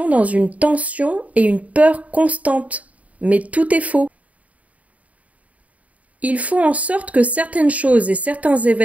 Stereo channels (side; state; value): left; late; 0.069 ms